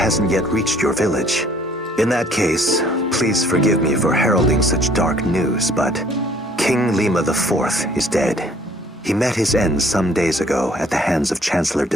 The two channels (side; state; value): both; normal; correlation 0.58